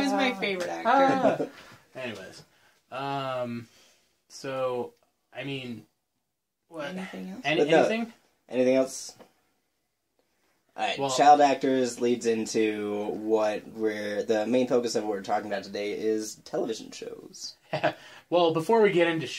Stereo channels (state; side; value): identical; both; correlation 1.00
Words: my favorite actor. Anyways, so I mean, what? Anything else? But no. Anything? Anything else? Alright, Well- child actors leads into what we're... The main focus of what we're talking about today is television shows. Well, before we get into